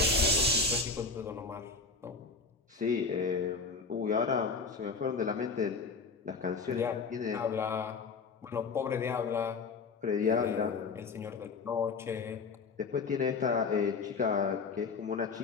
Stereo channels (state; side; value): quieter; right; 4.5 dB